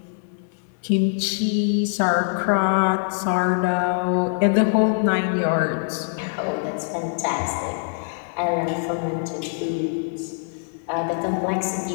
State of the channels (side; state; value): right; silent; digital silence